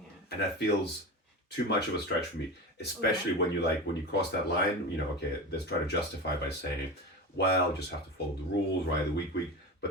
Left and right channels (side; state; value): both; normal; correlation 0.25